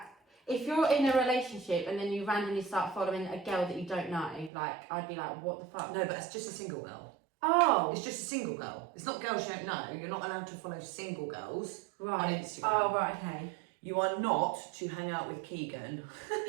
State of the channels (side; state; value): left; drops out; at 4.5 s